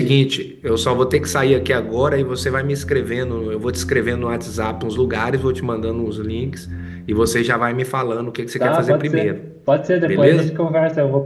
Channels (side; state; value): both; identical; correlation 1.00